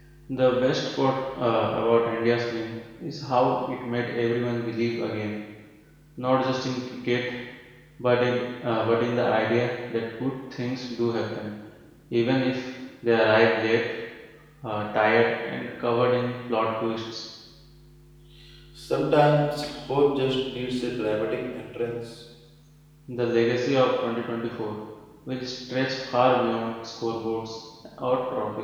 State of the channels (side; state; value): both; identical; correlation 1.00